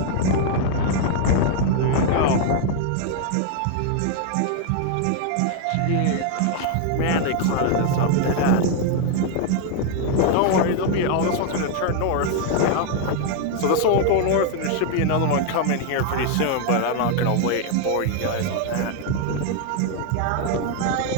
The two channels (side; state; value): both; different; correlation 0.00